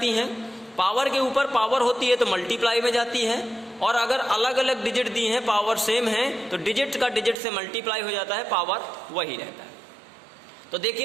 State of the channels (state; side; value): drops out; left; at 7.4 s